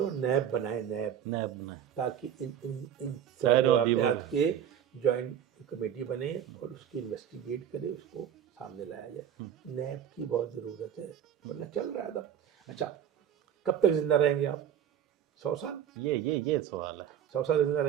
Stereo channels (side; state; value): left; quieter; 9.5 dB